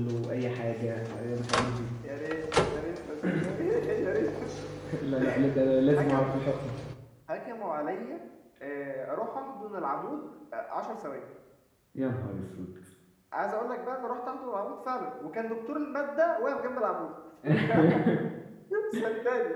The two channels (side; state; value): both; identical; correlation 1.00